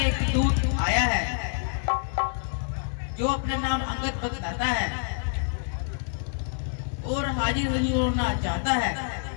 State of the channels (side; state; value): right; silent; digital silence